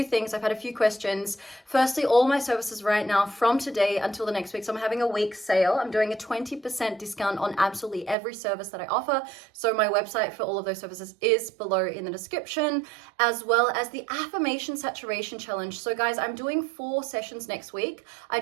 things. I've had a few questions. Firstly, all my services right now from today until the next week. So I'm having a week sale. I'm doing a 20% discount on absolutely every service that I offer. So my website for all of those services is below in the description, as well as the affirmation saturation challenge. So guys, I'm doing 4 sessions next week. I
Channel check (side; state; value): left; drops out; at 8.2 s